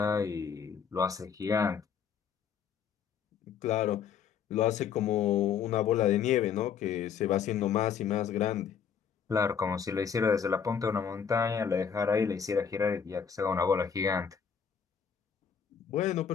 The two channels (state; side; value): quieter; right; 7.3 dB